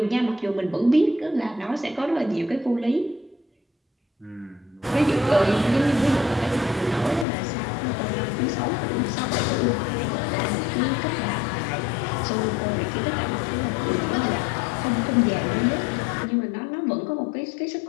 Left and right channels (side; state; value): right; drops out; at 7.2 s